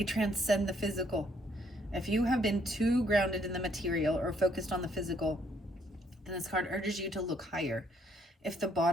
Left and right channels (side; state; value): both; normal; correlation 0.68